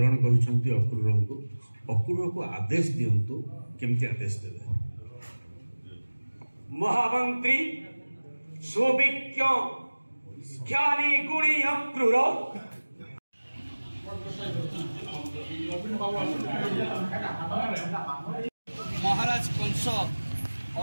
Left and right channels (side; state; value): both; inverted; correlation -1.00